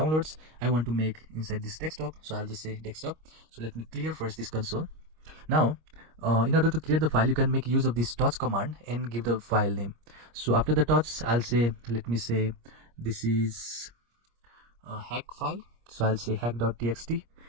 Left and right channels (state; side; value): late; left; 25 ms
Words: I want to make inside this desktop, so I'll just say desktop. So let me clear first this console. Now in order to create the file, you can make use of this touch command and give the file name. So after the touch, I'll say, let me say this is a hack file, so I'll say hack.txt.